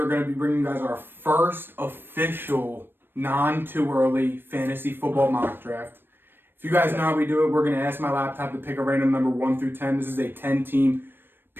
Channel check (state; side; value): late; left; 0.098 ms